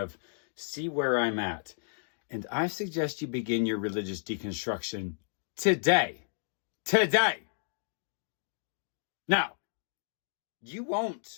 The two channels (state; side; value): silent; right; digital silence